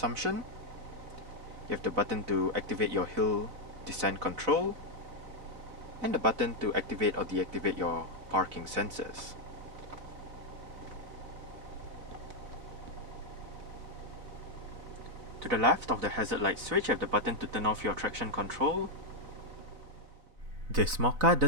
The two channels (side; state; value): left; late; 4.0 ms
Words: You have the button to activate your hill descent control, and the button to activate or deactivate your parking sensors. To the left of the hazard light switch, you have the button to turn off your traction control. This Mokka